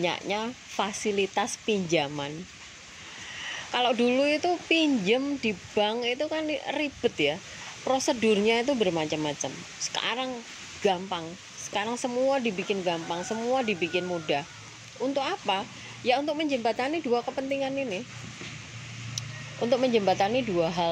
fasilitas pinjaman. Kalau dulu itu pinjem di bank itu kan ribet ya, prosedurnya itu bermacam-macam. Sekarang gampang, sekarang semua dibikin gampang, semua dibikin mudah. Untuk apa? Ya untuk menjembatani dua kepentingan ini, untuk menjembatani dua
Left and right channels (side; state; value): both; identical; correlation 1.00